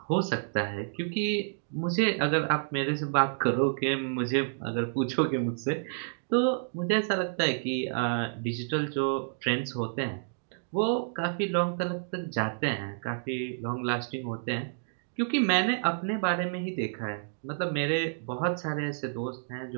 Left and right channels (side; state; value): left; silent; digital silence